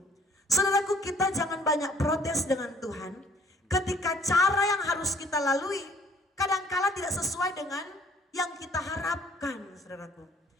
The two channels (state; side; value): normal; both; correlation 0.59